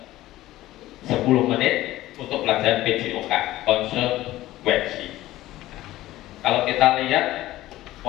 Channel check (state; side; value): quieter; right; 15.9 dB